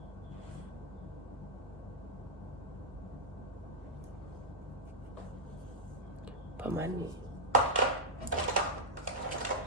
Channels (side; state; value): both; normal; correlation -0.04